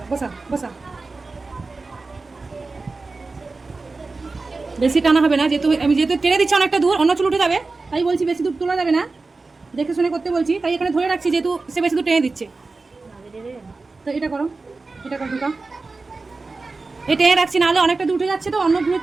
বসা বসা। বেশি টানা হবে না, যেহেতু আমি টেনে দিচ্ছি অনেকটা দূর, অন্য চুল উঠে যাবে, তাই বলছি বেশি দূর তোলা যাবে না, দেখে শুনে করতে বলছি, তাই এখানে ধরে রাখছি যেহেতু সে বেশি দূর টেনে দিচ্ছে। তো এটা করো, এটা করো ঢুকা, এটা টেনে রাখছি, নাহলে অনেকটা দূর উঠে যাচ্ছে, তো অন্য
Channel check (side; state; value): left; quieter; 3.8 dB